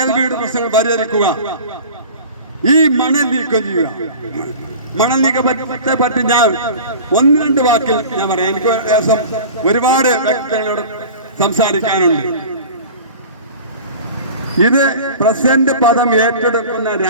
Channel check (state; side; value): inverted; both; correlation -0.39